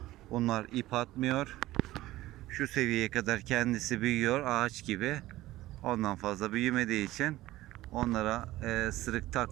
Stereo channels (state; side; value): quieter; left; 16.6 dB